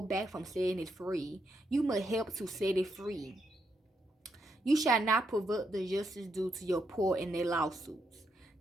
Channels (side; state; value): both; normal; correlation 0.80